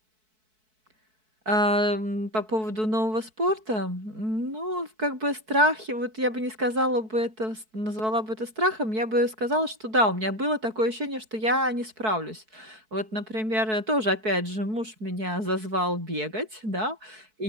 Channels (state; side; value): late; left; 4.6 ms